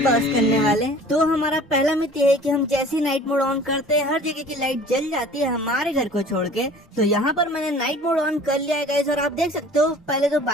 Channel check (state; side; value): normal; both; correlation 0.47